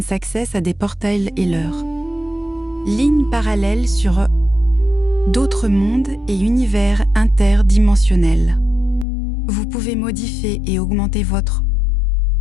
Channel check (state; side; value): drops out; right; at 9.1 s